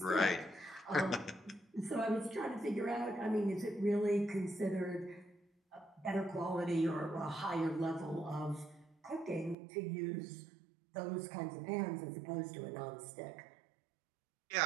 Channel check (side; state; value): left; drops out; at 9.6 s